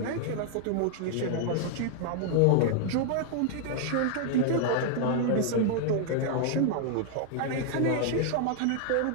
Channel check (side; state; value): both; different; correlation 0.00